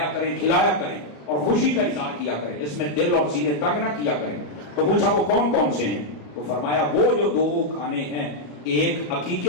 کریں, کھلایا کریں اور خوشی کا اظہار کیا کریں. اس میں دل اور سینے تنگ نہ کیا کریں. تو پوچھا وہ کون کون سے ہیں؟ تو فرمایا وہ جو 2 کھانے ہیں, ایک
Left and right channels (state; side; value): late; right; 34 ms